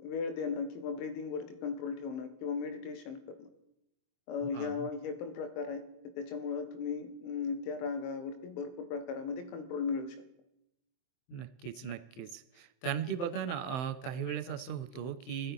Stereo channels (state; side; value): late; right; 23 ms